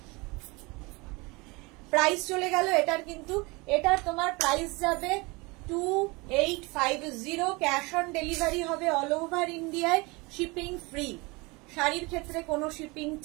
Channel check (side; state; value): left; quieter; 25.6 dB